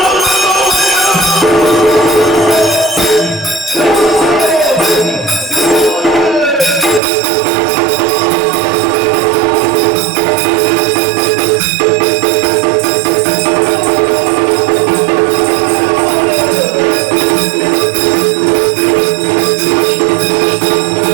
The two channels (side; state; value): left; drops out; at 7.0 s